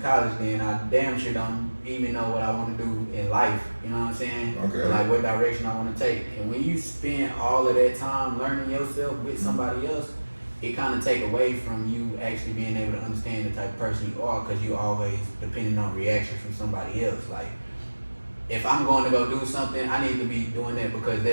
college, then I damn sure don't even know what I want to do in life. You know what I'm saying? Okay. Like what direction I want to take. And when you spend all of that time learning yourself with somebody else, it kind of take away from you actually being able to understand the type of person you are, because you always depending on reaction from somebody else. Like, if I'm going to go do something, I need to be doing that because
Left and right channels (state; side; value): inverted; both; correlation -1.00